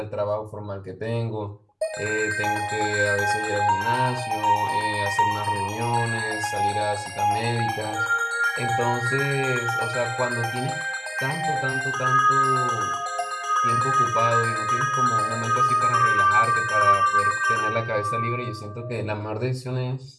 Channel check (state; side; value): identical; both; correlation 1.00